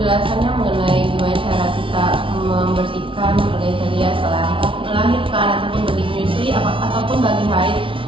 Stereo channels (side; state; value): left; late; 0.25 ms